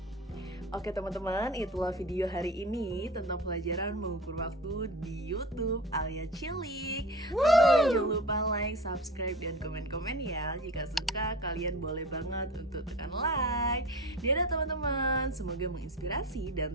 Oke teman-teman, itulah video hari ini tentang pelajaran mengukur waktu di YouTube Alia Cilik. Teman-teman jangan lupa like, subscribe, dan komen-komen ya. Jika suka, kalian boleh banget untuk tekan like. Dadah teman-teman, semoga menginspirasi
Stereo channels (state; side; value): normal; both; correlation 0.35